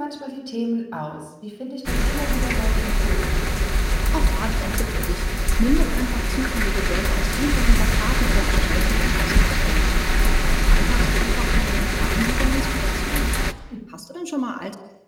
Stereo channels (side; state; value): both; identical; correlation 1.00